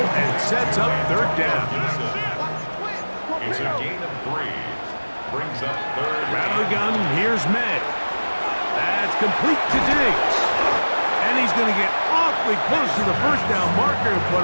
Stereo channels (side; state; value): both; inverted; correlation -1.00